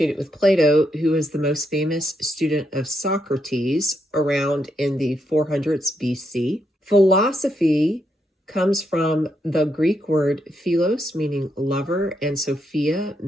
with Plato, who was the most famous student of Socrates around in the 400s BC. Philosophy comes from the Greek word philos, meaning lover, and Sophia,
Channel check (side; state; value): both; normal; correlation 0.80